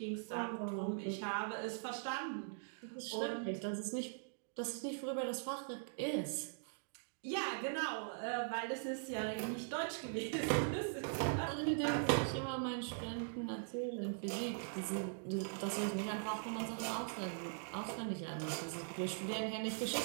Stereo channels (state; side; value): silent; left; digital silence